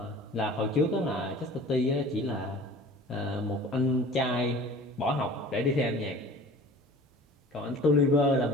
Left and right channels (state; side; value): normal; both; correlation 0.43